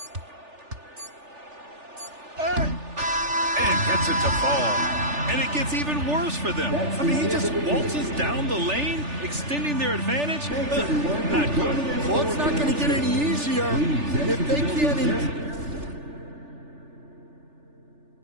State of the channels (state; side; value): late; left; 3.4 ms